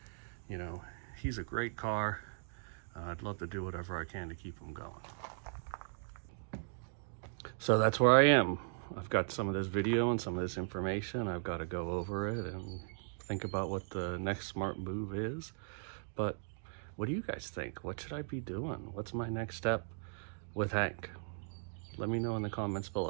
you know, he's a great car. I'd love to do whatever I can to keep him going. So that's where I am. I've got some of this video and some of this information. I've got to go over it and think about what the next smart move is. But what do you guys think? What should I be doing? What's my next step with Hank? Let me know in the comments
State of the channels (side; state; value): left; silent; digital silence